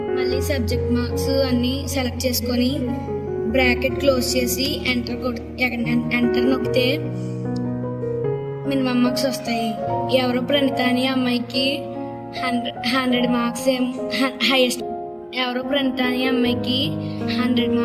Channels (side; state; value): both; identical; correlation 1.00